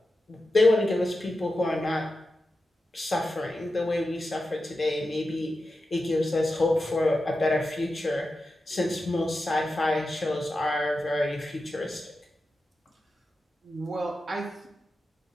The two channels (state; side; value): normal; both; correlation 0.91